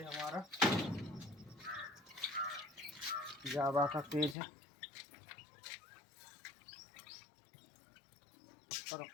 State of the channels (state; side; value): drops out; right; at 4.4 s